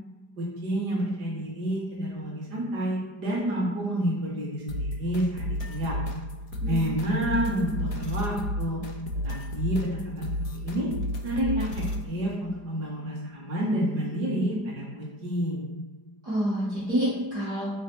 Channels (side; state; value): left; late; 4.9 ms